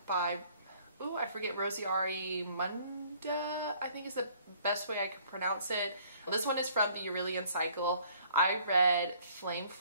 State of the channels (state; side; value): inverted; both; correlation -0.59